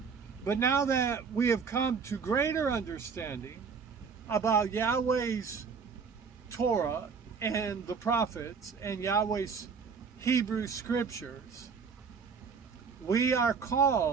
But now that we have come to greater understanding about Yahweh's Torah and the prophets and Yahweh's Hebrew scriptures, we are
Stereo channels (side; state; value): left; quieter; 5.6 dB